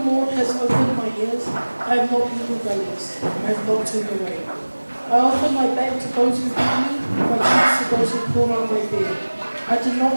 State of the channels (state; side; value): inverted; both; correlation -1.00